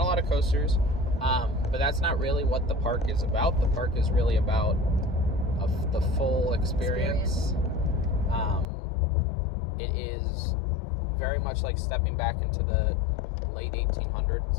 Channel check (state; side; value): drops out; right; at 8.7 s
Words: of coasters. But that's not really what the park is about. The park is really about the full experience. It is very much like stepping back into the late